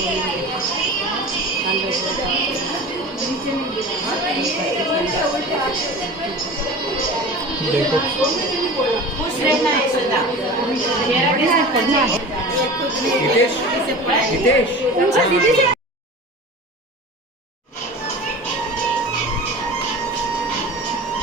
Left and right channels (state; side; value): normal; both; correlation 0.36